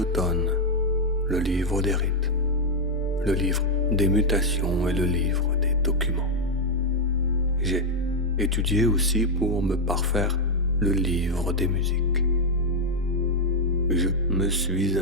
le livre des rites, le livre des mutations et le livre des documents. J'ai étudié aussi pour me parfaire le livre des musiques. Je me suis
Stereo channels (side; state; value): both; normal; correlation 0.00